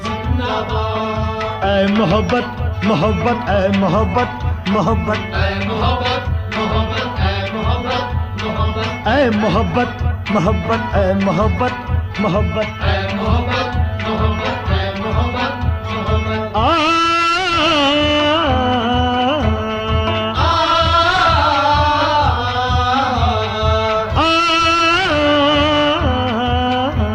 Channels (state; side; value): identical; both; correlation 1.00